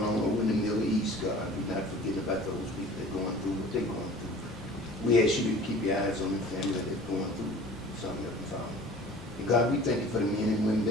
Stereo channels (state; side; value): normal; both; correlation 0.45